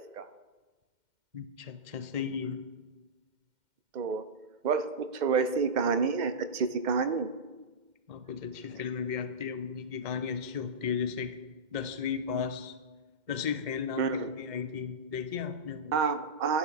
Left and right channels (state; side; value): late; left; 2.1 ms